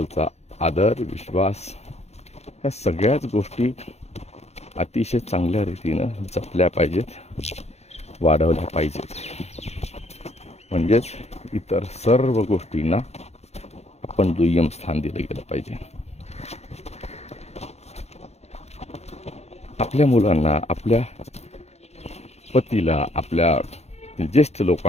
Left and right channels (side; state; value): right; late; 0.31 ms